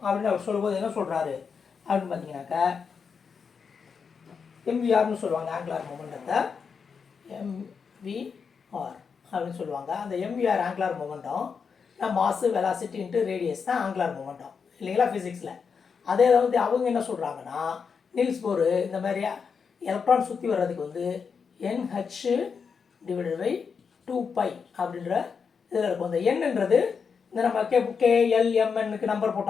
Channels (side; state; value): right; quieter; 5.9 dB